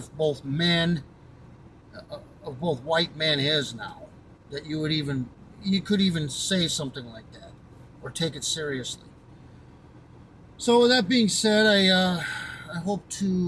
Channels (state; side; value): identical; both; correlation 1.00